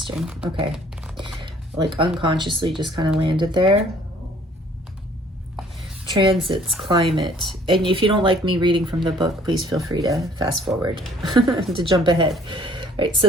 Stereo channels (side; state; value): both; normal; correlation 0.57